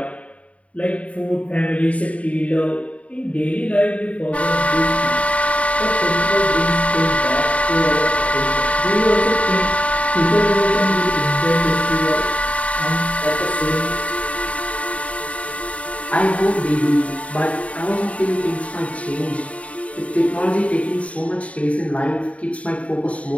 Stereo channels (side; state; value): right; late; 0.065 ms